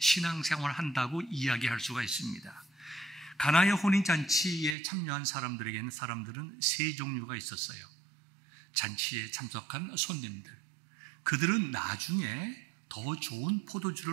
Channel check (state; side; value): drops out; left; at 4.8 s